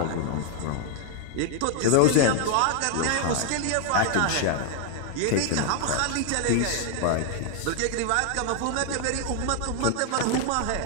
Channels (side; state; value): both; different; correlation 0.00